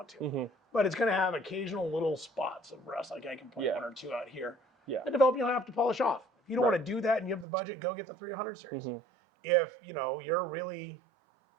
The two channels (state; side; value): drops out; left; at 7.5 s